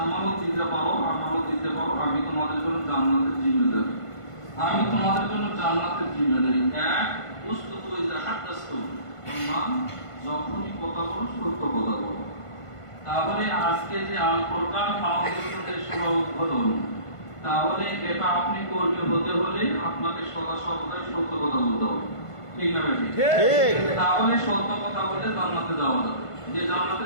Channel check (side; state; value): right; late; 1.5 ms